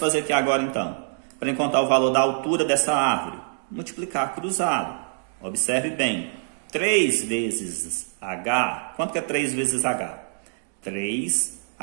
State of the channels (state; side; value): silent; left; 62 dB below the other